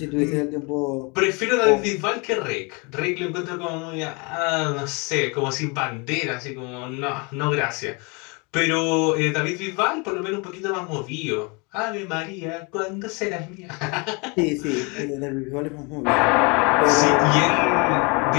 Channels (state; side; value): quieter; right; 30.2 dB